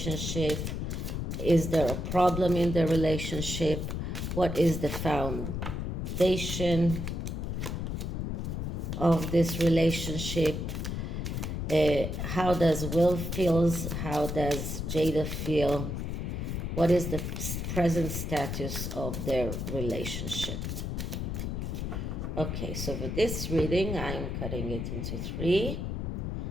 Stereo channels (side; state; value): left; noise; rumble, 3 dB below the sound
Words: Is there a problem in their relationship? What is the foundation of this relationship? How does Will feels? How does Jada feel? What is the present status of their relationship? Okay, so for this reading, I'm cutting it into 3.